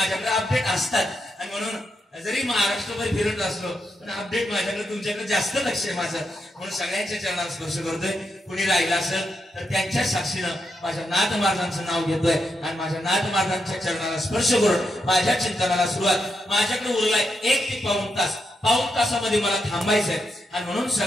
अपडेट असतात. आणि म्हणून जरी महाराष्ट्रभर फिरत असलो पण अपडेट माझ्याकडे तुमच्याकडे जास्त लक्ष आहे माझं. म्हणून सगळ्यांच्या चरणाला स्पर्श करतोय. कुणी राहिला असेल तर त्यांच्या साक्षीनं माझ्या नाथ महाराजांचं नाव घेतोय आणि माझ्या नाथ महाराजांच्या चरणाला स्पर्श करून माझ्या चिंतनाला सुरुवात. माझ्याकडे उरलाय 1 ते पाऊण तास. पाऊण तासामध्ये मला थांबायचंय आणि म्हणून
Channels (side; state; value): both; normal; correlation 0.83